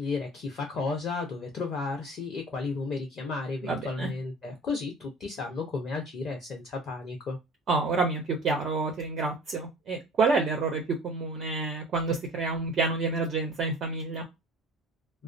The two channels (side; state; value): both; normal; correlation 0.43